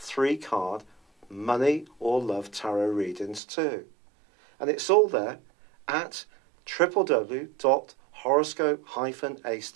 money or love tarot readings too. And it's all there at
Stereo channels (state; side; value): drops out; left; at 3.4 s